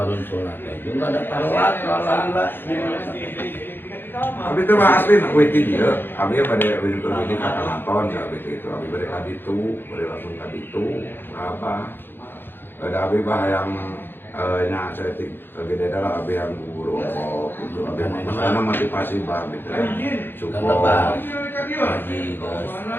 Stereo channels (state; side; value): late; right; 0.10 ms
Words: sulna teh jeung ada taruat alhamdulillah. Abi itu mah asli nak witi dia. Abi pada witi ini kata nonton ya abi itu. Abi pada kaditu, pada langsung kaditu. Apa? Ada abi bah yang nya setik gede adalah abi yang guru itu abi mana motivasi bah abi teh. Support. Haji geus